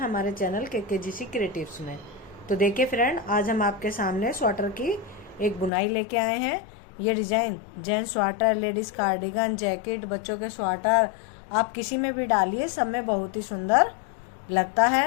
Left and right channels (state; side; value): drops out; right; at 5.7 s